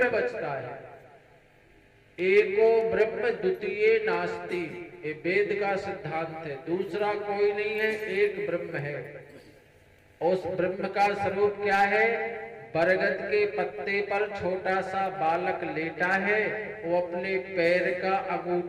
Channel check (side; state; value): both; identical; correlation 1.00